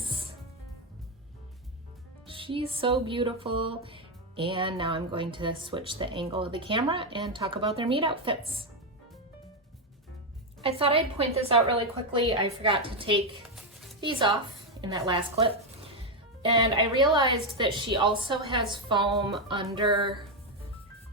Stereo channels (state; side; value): normal; both; correlation 0.05